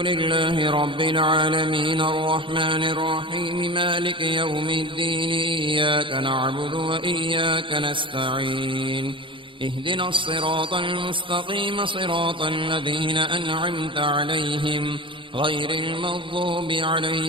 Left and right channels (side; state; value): left; late; 0.25 ms